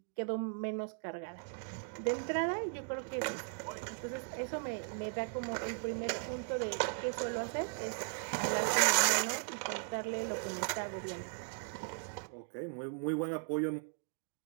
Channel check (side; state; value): left; silent; 53 dB below the other